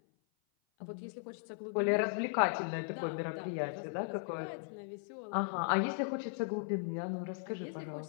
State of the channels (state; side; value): silent; right; 53 dB below the other